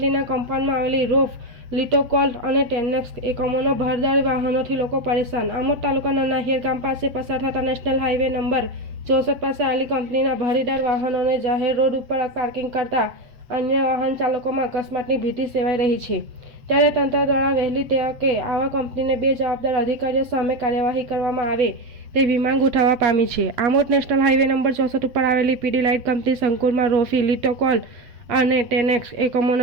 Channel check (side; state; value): left; late; 7.9 ms